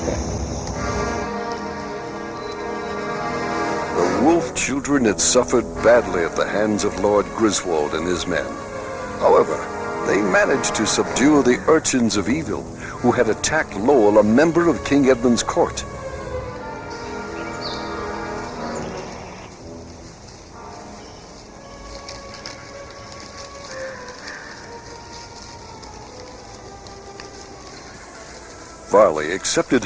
The wolf children had suffered badly at the hands of Lord Griswold and his men. However, they managed to subdue the urchins of evil who had attacked Lowell, a member of King Edmund's court. Varley accepted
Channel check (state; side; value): identical; both; correlation 1.00